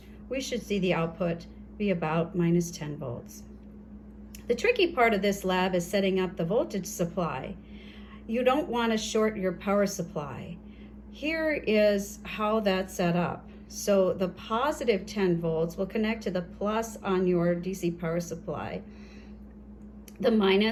we should see the output be about -10 volts. The tricky part of this lab is setting up the voltage supply. You don't want to short your power supply. Here is how that's set up. So the positive 10 volts will connect to the plus on your DC power supply. The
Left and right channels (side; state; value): both; identical; correlation 1.00